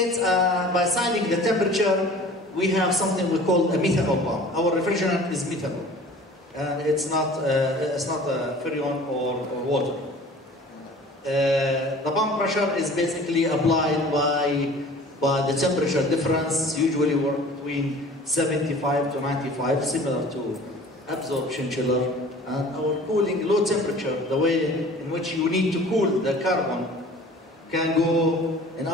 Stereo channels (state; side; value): normal; both; correlation 0.45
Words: by assigning the temperature, we have something we call a methanol pump. Our refrigerant is methanol, and it's not freon or water. The pump pressure is basically applied by the temperature difference, usually we're between 75 to 95, similar to absorption chiller. And our cooling, low temperature, the way in which you need to cool the carbon, can go, in